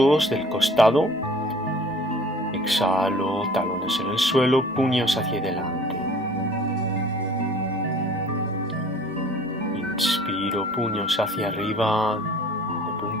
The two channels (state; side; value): normal; both; correlation 0.50